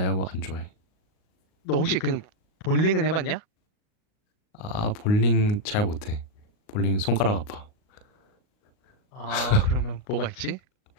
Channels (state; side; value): late; right; 38 ms